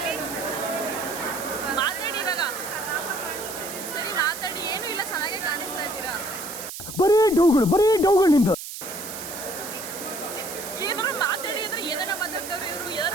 ಮಾತಾಡಿ ಇವಾಗ. ಸರಿ ಮಾತಾಡಿ. ಏನೂ ಇಲ್ಲ, ಚೆನ್ನಾಗೇ ಕಾಣಿಸ್ತಾ ಇದ್ದೀರಾ. ಬರೀ ಡೌಗಳು ನಿಂದು. ಏನಾರು ಮಾತಾಡಿ ಅಂದ್ರೆ ಏನಾರ ಮಾತಾಡ್ತಾವ್ರೆ ಇವರು.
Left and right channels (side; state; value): right; noise; hiss, 9 dB below the sound